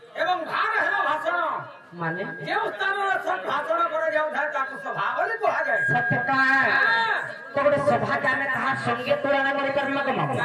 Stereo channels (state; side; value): identical; both; correlation 1.00